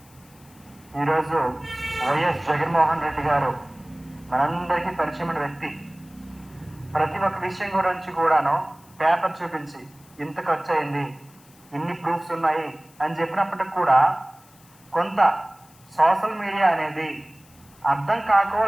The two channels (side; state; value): left; noise; hiss, 27 dB below the sound